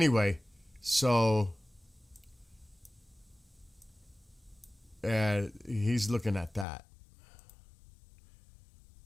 so he's looking at that.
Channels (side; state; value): right; drops out; at 6.7 s